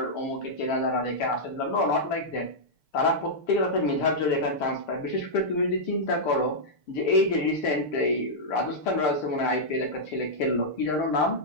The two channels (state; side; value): late; right; 6.6 ms